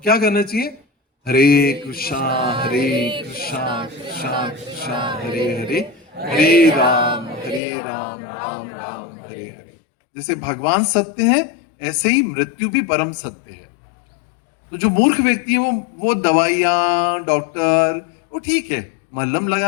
करना चाहिए? हरे कृष्णा हरे कृष्णा कृष्णा कृष्णा हरे हरे, हरे राम राम राम हरे हरे। जैसे भगवान सत्य है, ऐसे ही मृत्यु भी परम सत्य है। तो जो मूर्ख व्यक्ति है वो दवाइयां, डॉक्टर, वो ठीक है, मलहम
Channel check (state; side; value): drops out; right; at 7.6 s